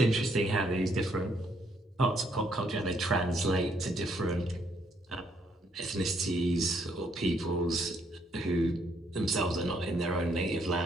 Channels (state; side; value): normal; both; correlation 0.71